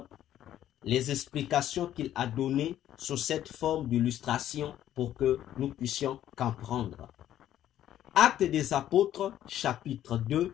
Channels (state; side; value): quieter; right; 11.9 dB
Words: les explications qu'il a données sous cette forme d'illustration pour que nous puissions comprendre. Actes des Apôtres, chapitre 2,